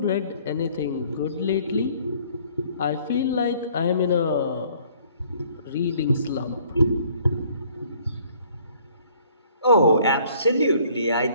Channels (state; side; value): inverted; both; correlation -0.59